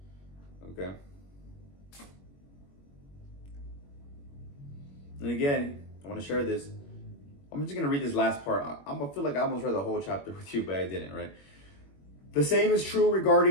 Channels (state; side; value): late; right; 21 ms